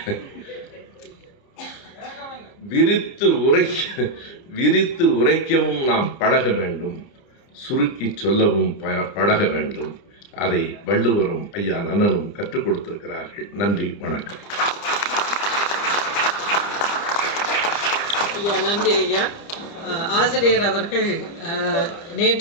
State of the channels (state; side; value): late; right; 30 ms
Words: விரித்து உரைக்கவும் நாம் பழக வேண்டும், சுருக்கி சொல்லவும் பழக வேண்டும். அதை வள்ளுவரும் ஐயா நன்னனும் கற்றுக் கொடுத்திருக்கிறார்கள். நன்றி, வணக்கம். ஐயா நன்றி ஐயா. ஆசிரியர் அவர்கள்